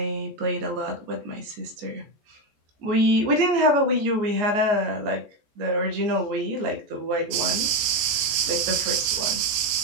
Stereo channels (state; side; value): late; left; 14 ms